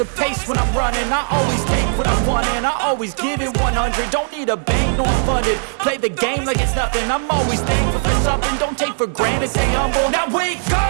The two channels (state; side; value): silent; left; 67 dB below the other